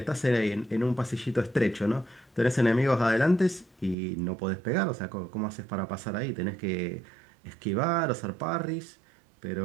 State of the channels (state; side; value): drops out; left; at 4.0 s